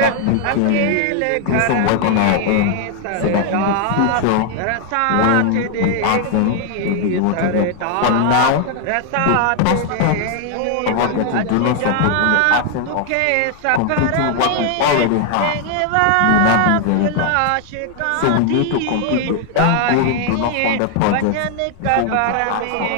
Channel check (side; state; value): both; different; correlation 0.00